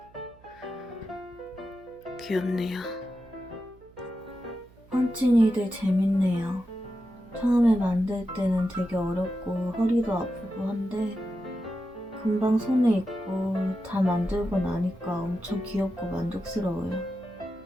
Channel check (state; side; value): noise; right; hum, 26 dB below the sound